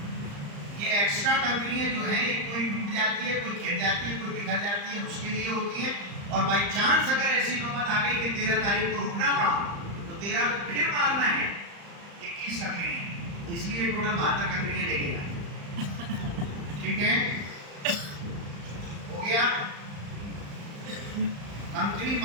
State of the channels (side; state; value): left; late; 35 ms